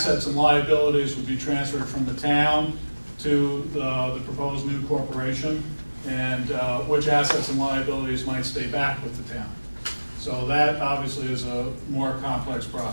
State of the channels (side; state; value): both; inverted; correlation -1.00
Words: and liabilities would be transferred from the town to the proposed new corporation, and which assets and liabilities might stay back with the town. So that obviously is a more complex